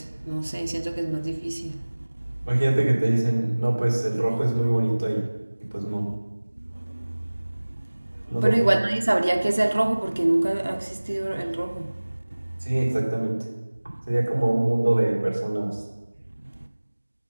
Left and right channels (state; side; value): inverted; both; correlation -1.00